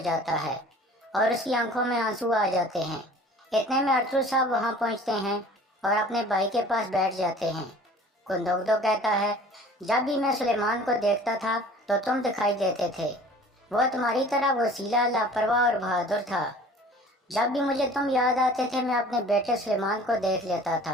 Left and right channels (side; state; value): both; normal; correlation 0.47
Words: जाता है और उसकी आंखों में आंसू आ जाते हैं। इतने में अरतुल साहब वहां पहुंचते हैं और अपने भाई के पास बैठ जाते हैं। गुंदोगदो कहता है, जब भी मैं सुलेमान को देखता था तो तुम दिखाई देते थे। वो तुम्हारी तरह वसीला, लापरवाह और बहादुर था। जब भी मुझे तुम याद आते थे मैं अपने बेटे सुलेमान को देख लेता